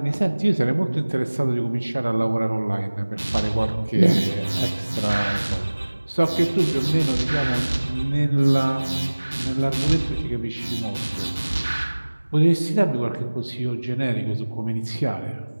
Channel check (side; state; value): both; inverted; correlation -1.00